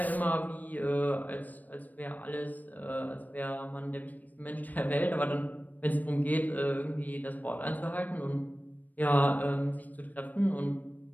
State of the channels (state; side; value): late; right; 0.082 ms